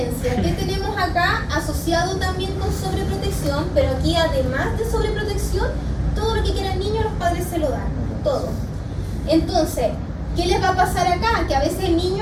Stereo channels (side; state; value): both; identical; correlation 1.00